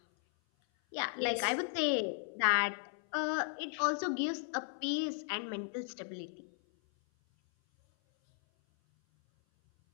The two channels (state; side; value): silent; right; 54 dB below the other